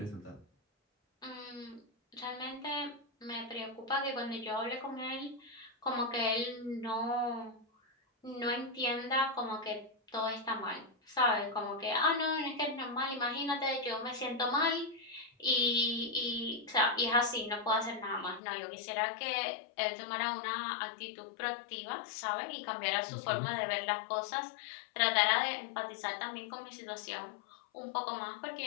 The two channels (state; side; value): drops out; right; at 18.4 s